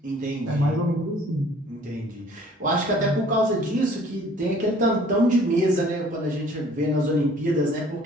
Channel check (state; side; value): normal; both; correlation 0.54